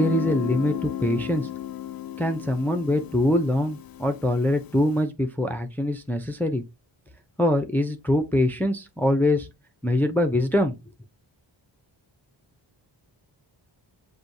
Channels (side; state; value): both; normal; correlation 0.76